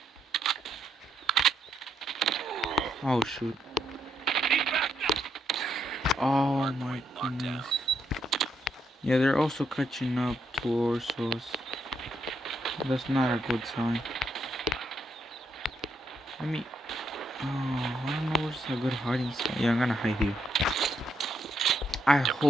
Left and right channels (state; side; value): normal; both; correlation 0.76